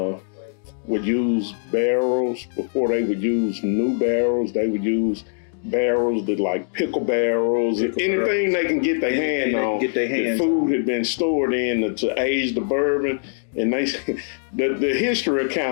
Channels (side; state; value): right; silent; digital silence